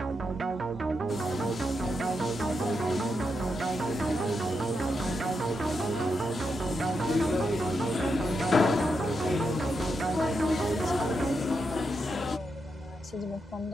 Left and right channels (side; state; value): both; normal; correlation 0.84